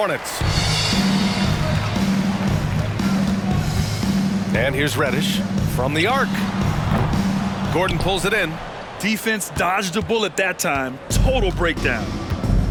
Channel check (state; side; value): identical; both; correlation 1.00